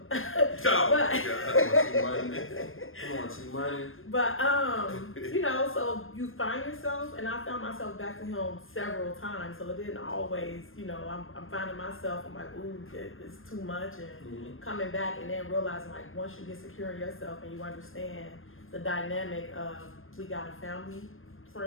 Come on, T-Money. But you know, so you find yourself, and I found myself back to him several times. So it didn't always, you know, I'm finding myself. I'm like, ooh, it's too much, and coming back, and then realizing like once you get secure in yourself and you understand the dynamic of we got a family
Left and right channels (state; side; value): late; right; 0.60 ms